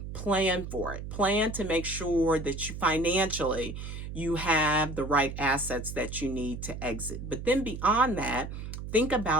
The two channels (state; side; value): noise; right; hum, 8 dB below the sound